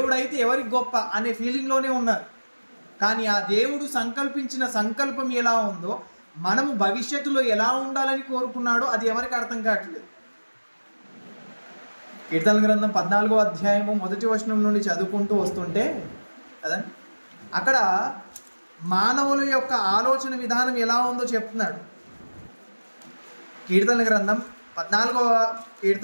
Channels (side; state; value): both; inverted; correlation -1.00